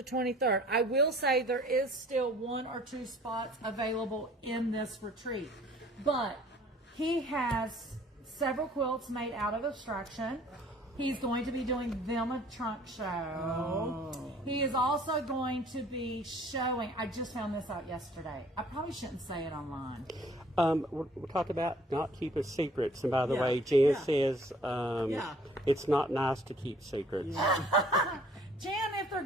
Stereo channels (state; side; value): normal; both; correlation 0.55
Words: 23rd. I will say there is still 1 or 2 spots available in this retreat. But he has several quilts made out of Abstraction. He's going to be doing them a trunk show. Oh. He is also going to be showing, I just found this out yesterday. I probably shouldn't say it online. We're talking about not keeping secrets. And by the Yeah. way, Jan Yeah. says Yeah. it's not nice to keep secrets. Jan, if they're